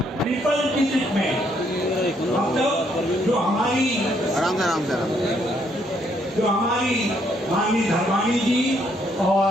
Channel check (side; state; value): both; normal; correlation 0.71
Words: ट्रिपल डिजिट में मतलब जो हमारी माननीय धर्माणी जी